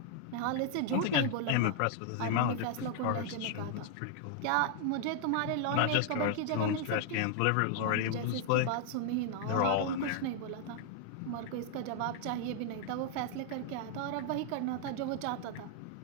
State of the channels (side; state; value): both; different; correlation 0.00